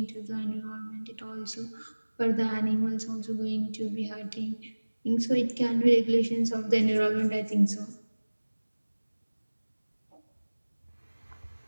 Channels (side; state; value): both; inverted; correlation -1.00